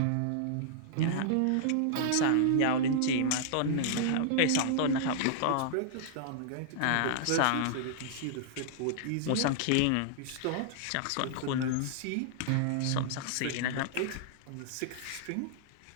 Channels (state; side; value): different; both; correlation -0.01